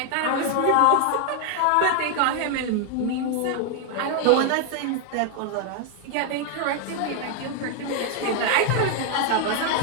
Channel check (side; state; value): both; different; correlation 0.00